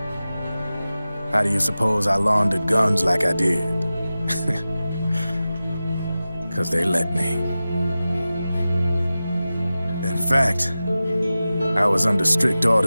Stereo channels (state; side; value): inverted; both; correlation -0.95